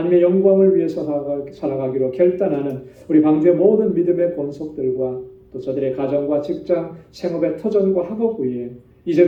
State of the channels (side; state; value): both; identical; correlation 1.00